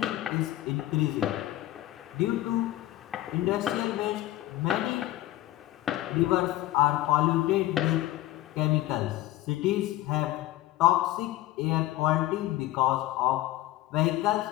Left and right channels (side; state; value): right; quieter; 15.5 dB